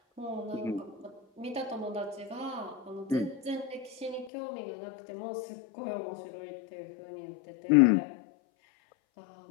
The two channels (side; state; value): right; drops out; at 4.3 s